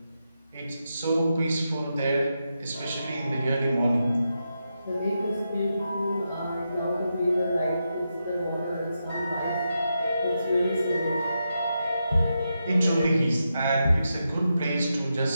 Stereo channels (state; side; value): inverted; both; correlation -0.86